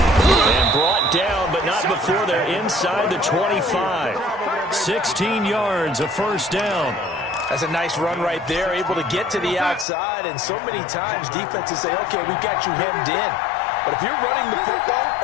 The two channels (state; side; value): drops out; right; at 9.9 s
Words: And brought down, but not before they're inside the 25. 16 yards, a first down. That's a nice run right there, able to get to the outside, and so many times defenses say, okay, we've got you hemmed in. But if you're running the football,